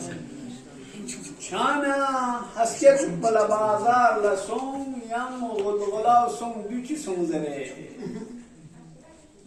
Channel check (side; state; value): both; identical; correlation 1.00